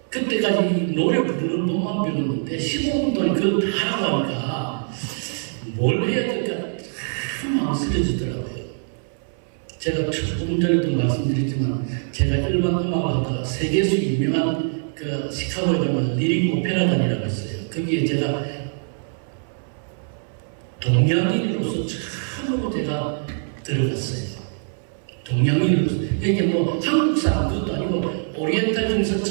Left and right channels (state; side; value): silent; left; 63 dB below the other